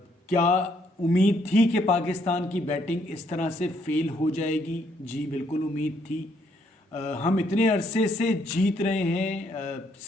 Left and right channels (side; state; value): both; normal; correlation 0.71